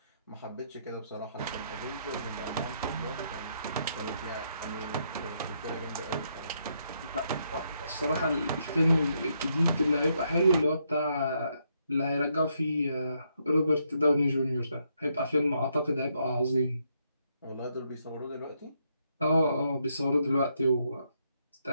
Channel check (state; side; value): inverted; both; correlation -0.76